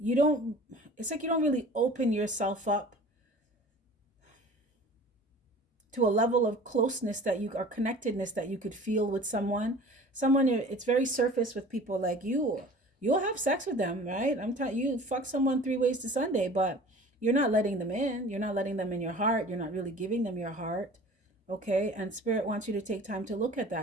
like you don't really open yourself up to a level of closeness that you, or connectedness that you could feel with someone. It's very surface with people like you. You'll have sex with them, right? I'm telling you, fuck someone 3 ways to Sunday, but you're not letting them in. You're not letting them in your heart. You're not really giving them your heart. Okay. And Spirit wants you to take time to look at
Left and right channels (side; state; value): both; normal; correlation 0.44